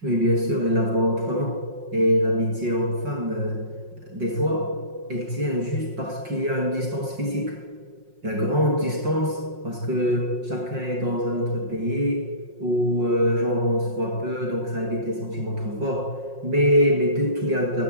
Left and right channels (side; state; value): left; late; 5.5 ms